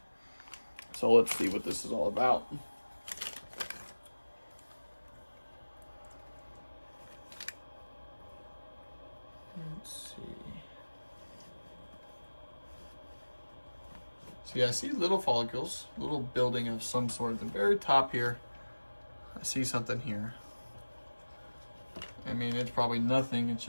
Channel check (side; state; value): both; inverted; correlation -1.00